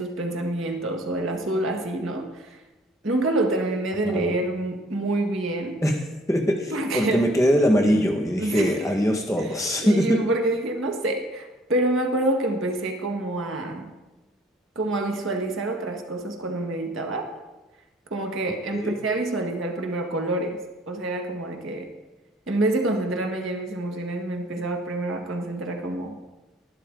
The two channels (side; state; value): both; normal; correlation 0.58